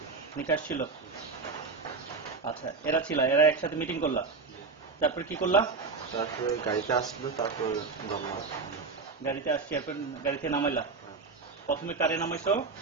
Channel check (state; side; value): quieter; left; 4.4 dB